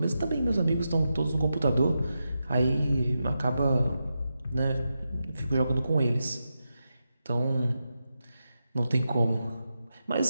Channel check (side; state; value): both; inverted; correlation -0.88